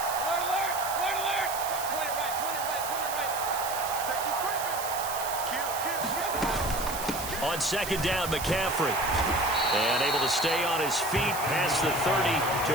On second down, McCaffrey. And able to stay on his feet past the 30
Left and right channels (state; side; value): noise; right; hiss, 7 dB below the sound